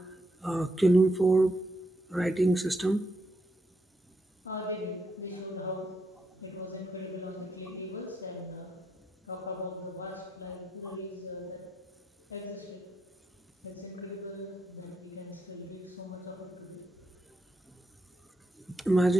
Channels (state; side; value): normal; both; correlation 0.80